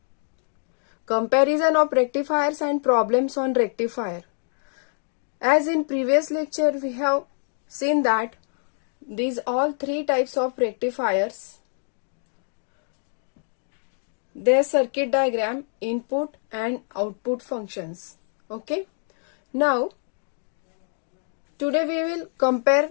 comparison of rectifiers and problems on rectifier. As in previous lecture we have seen that these all three types of rectifiers, their circuit diagram, input and output functions. Okay. Now today we will compare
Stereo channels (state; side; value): silent; right; 58 dB below the other